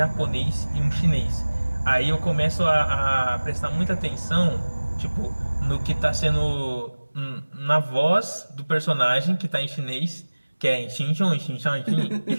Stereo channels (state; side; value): inverted; both; correlation -1.00